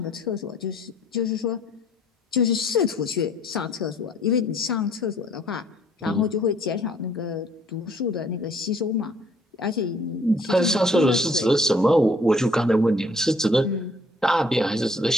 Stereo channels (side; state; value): both; normal; correlation 0.60